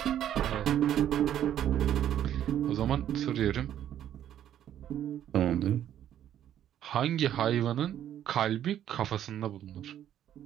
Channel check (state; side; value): quieter; left; 10.8 dB